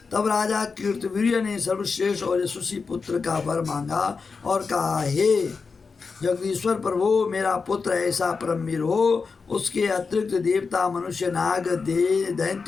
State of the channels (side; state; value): right; quieter; 4.9 dB